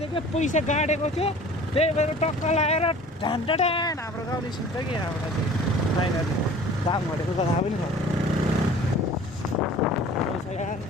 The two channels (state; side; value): normal; both; correlation 0.47